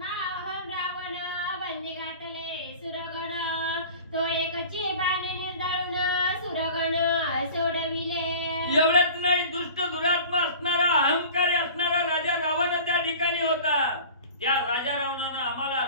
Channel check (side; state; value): both; inverted; correlation -0.40